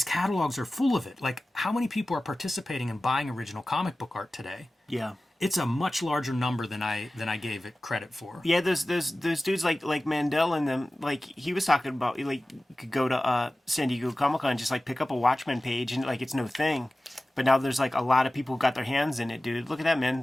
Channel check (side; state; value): both; normal; correlation 0.96